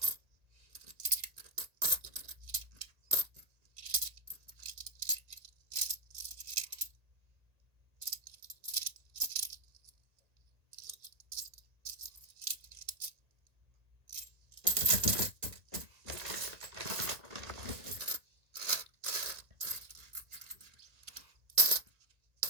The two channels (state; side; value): late; left; 1.9 ms